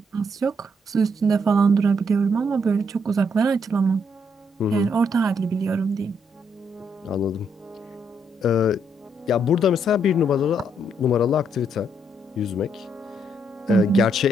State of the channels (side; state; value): both; normal; correlation 0.74